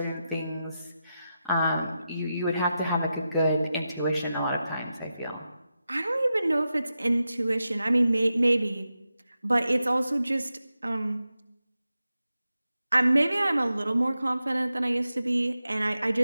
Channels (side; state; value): both; inverted; correlation -0.90